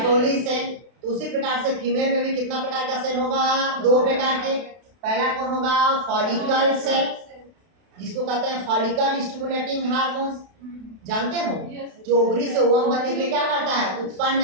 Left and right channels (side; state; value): left; late; 32 ms